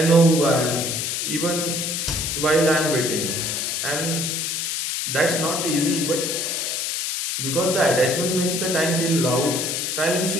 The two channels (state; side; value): noise; left; hiss, 1 dB below the sound